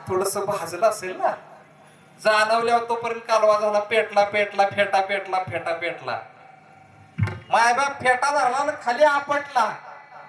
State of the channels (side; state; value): both; identical; correlation 1.00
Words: थोडस भाजलं असेल ना, जाणवल्यावर तोपर्यंत कालवा झाला, पेटला पेटला, फेटा पेटला, फेटा पेटला. मायबाप फेटा धरला ना खाली आपटला.